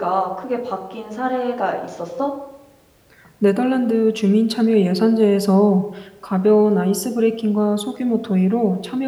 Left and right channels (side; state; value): both; identical; correlation 1.00